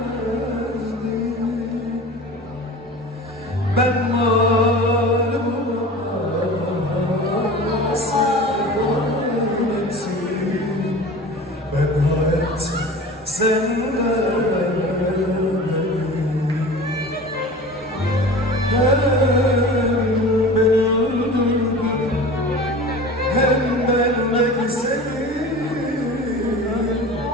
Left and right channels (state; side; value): normal; both; correlation 0.37